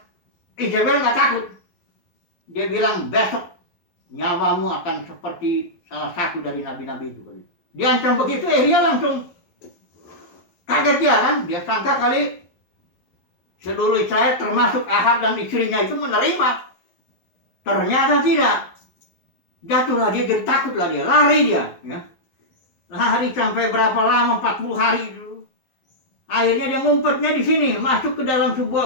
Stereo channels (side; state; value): right; late; 12 ms